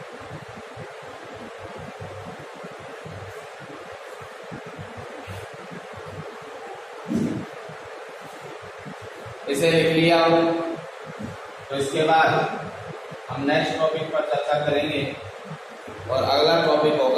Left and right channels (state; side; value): identical; both; correlation 1.00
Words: इसे लिख लिया हो, तो इसके बाद हम नेक्स्ट टॉपिक पर चर्चा करेंगे और अगला टॉपिक